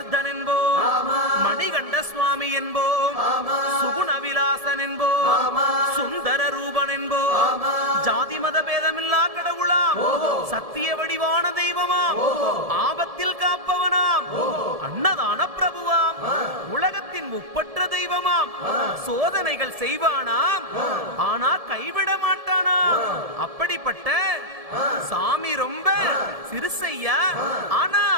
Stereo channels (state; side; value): late; left; 1.7 ms